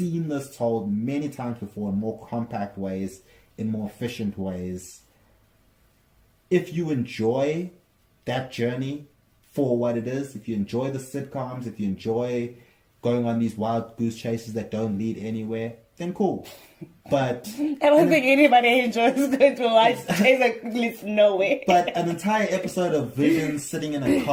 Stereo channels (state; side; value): identical; both; correlation 1.00